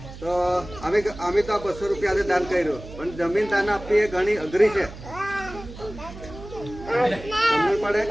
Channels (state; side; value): noise; right; hum, 14 dB below the sound